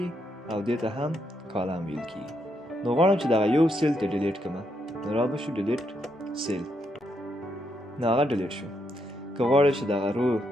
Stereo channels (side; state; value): both; normal; correlation 0.78